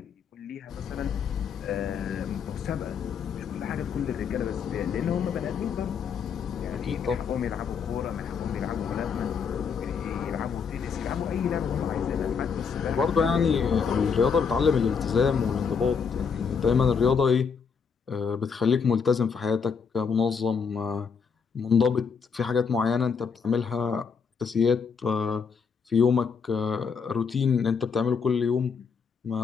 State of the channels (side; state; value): right; quieter; 6.1 dB